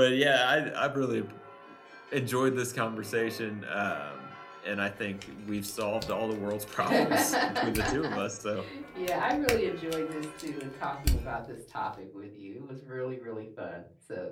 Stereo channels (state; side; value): identical; both; correlation 1.00